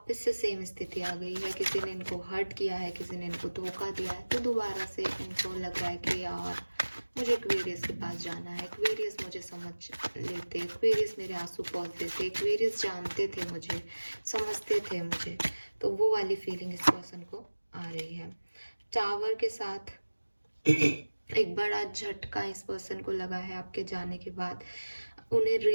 से सेम स्थिति आ गई है, किसी ने इनको हर्ट किया है, किसी ने इनको धोखा दिया है, तो दोबारा से इनको लग रहा है कि यार मुझे एक्वेरियस के पास जाना है, एक्वेरियस मुझे समझ लेते, एक्वेरियस मेरे आंसू पोंछ देते, एक्वेरियस जानते थे मुझे, समझते थे मुझे। तो वो वाली फीलिंग इस पर्सन को आ रही है। टावर के साथ एक बड़ा झटका इस पर्सन को लगा है आपके जाने के बाद। उन्हें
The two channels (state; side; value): inverted; both; correlation -1.00